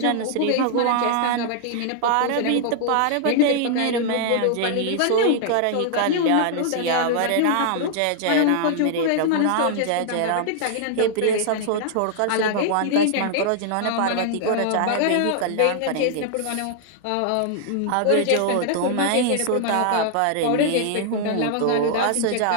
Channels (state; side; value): different; both; correlation 0.00